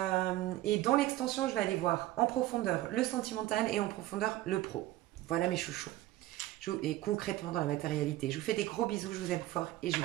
dans l'extension, je vais aller voir en profondeur le sentimental et en profondeur le pro. Voilà mes chouchous. Et concrètement dans la matérialité. Je vous fais des gros bisous, je vous aime fort et je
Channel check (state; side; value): quieter; left; 16.0 dB